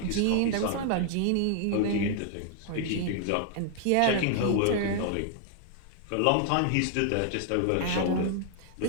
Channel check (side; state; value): both; different; correlation 0.00